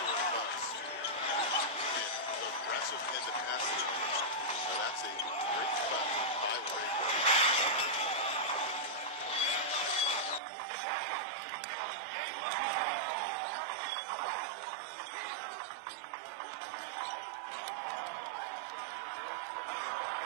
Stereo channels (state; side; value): drops out; left; at 10.4 s